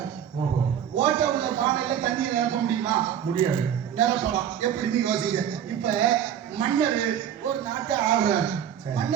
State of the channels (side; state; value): left; quieter; 9.4 dB